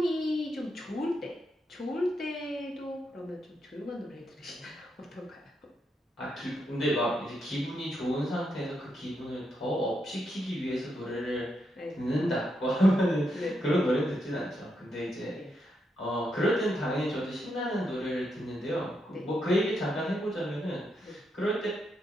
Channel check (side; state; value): both; normal; correlation 0.81